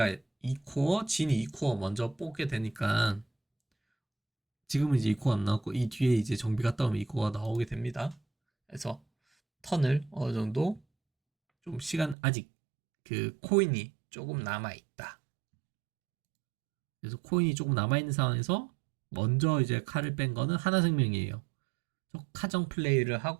2코어, 진이 2코어 먼저 뽑게 되니까, 지금은 이제 2코어 안 나왔고 이 뒤에 이제 정비 갔다 오면 2코어가 나오게 됩니다. 그래서 턴을 어느 정도 좀 시간, 아직 그 코인이 조금 남아 있다. 그래서 코인이 조금 남아 있는 상황에서 먼저 이제 칼을 뺀 거는 하나생명이에요. 카정 플레이를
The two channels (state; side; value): drops out; left; at 12.2 s